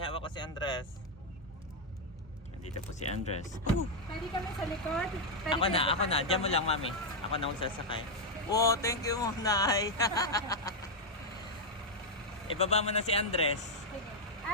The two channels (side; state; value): both; normal; correlation -0.01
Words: hawak ko si Andres. Nandito po si Andres. Pwede kami sa likod? Ako na. Diyan mo lang mami. Ako na sasakay. Wow, thank you Monay. Ibaba mo na si Andres.